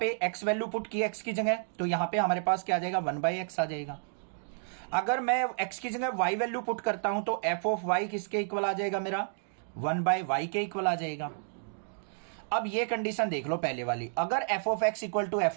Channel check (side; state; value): left; silent; digital silence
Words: x वैल्यू पुट की x की जगह, तो यहां पे हमारे पास क्या आ जाएगा, 1/x आ जाएगा। अगर मैं x की जगह y वैल्यू पुट करता हूं तो f ऑफ y किसके इक्वल आ जाएगा, मेरा 1/y के इक्वल आ जाएगा। अब ये कंडीशन देख लो पहले वाली, अगर F of x equal to F